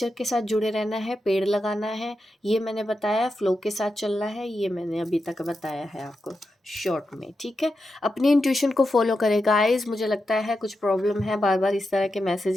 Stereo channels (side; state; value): both; normal; correlation 0.88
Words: के साथ जुड़े रहना है, पेड़ लगाना है, ये मैंने बताया, फ्लो के साथ चलना है, ये मैंने अभी तक बताया है आपको शॉर्ट में, ठीक है। अपनी इंट्यूशन को फॉलो करें गाइस। मुझे लगता है कुछ प्रॉब्लम है, बार बार इस तरह के